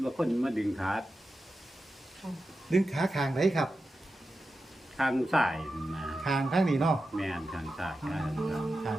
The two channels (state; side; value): normal; both; correlation 0.92